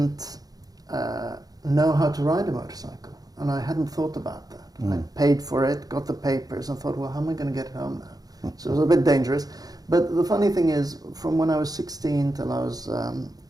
know how to ride a motorcycle, and I hadn't thought about that. I paid for it, got the papers, and thought, well, how am I going to get it home now? So it was a bit dangerous. But the funny thing is, from when I was 16 till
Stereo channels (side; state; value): left; late; 0.18 ms